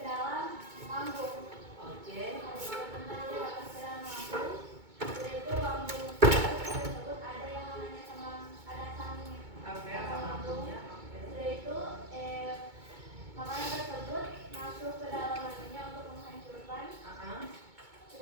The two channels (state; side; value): late; left; 2.2 ms